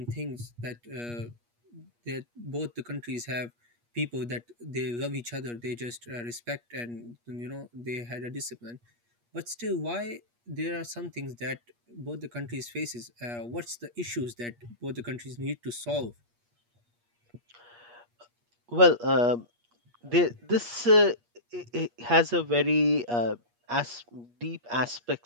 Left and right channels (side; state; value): left; late; 8.4 ms